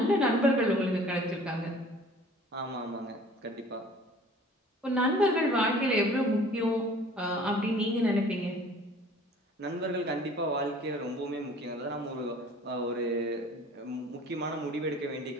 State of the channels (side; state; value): both; normal; correlation 0.49